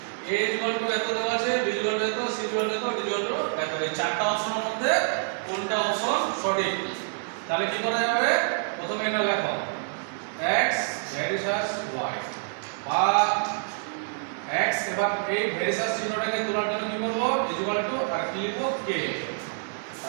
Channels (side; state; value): left; silent; digital silence